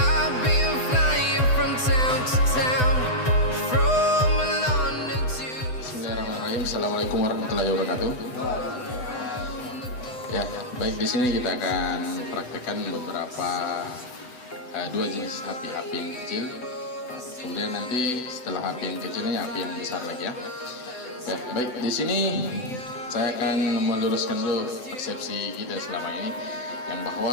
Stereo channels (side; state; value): right; late; 7.9 ms